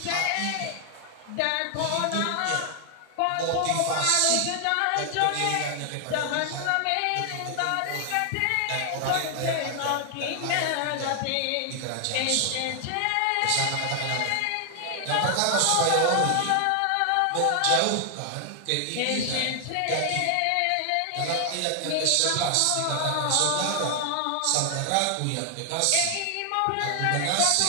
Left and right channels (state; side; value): different; both; correlation 0.00